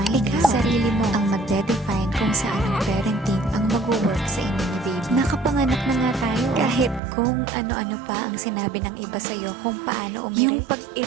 ikaw. Sarili mo ang magde-define kung saan ang parenting ang mag-work sa inyo ni baby. Nakapanganak na nga tayo. Kahit kung ano-ano pa ang sinabi ng iba sa'yo kung paano yung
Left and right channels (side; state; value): left; drops out; at 7.0 s